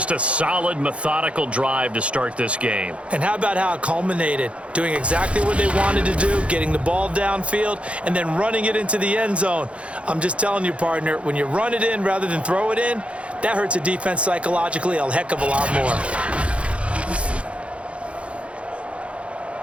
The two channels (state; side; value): late; left; 0.061 ms